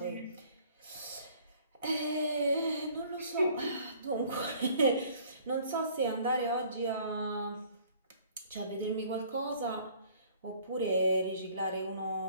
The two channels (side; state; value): both; inverted; correlation -0.55